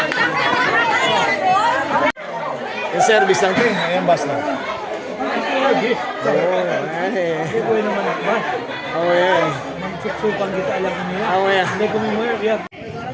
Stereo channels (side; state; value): both; identical; correlation 1.00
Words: Yung service lang, te. Ayan, bus na. Oh, ay. Oh, yeah. Magsuksukan kita alam ko nila. Oh, yeah. Hindi ko mo yeah.